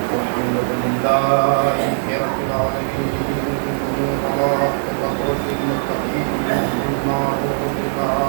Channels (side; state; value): left; silent; digital silence